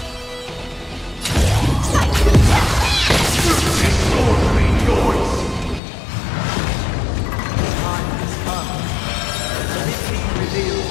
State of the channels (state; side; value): drops out; right; at 5.8 s